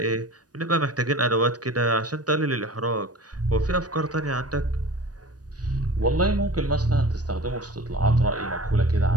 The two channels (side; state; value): left; late; 0.68 ms